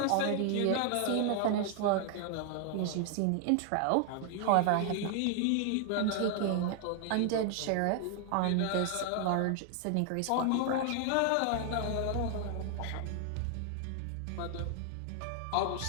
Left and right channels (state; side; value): different; both; correlation 0.00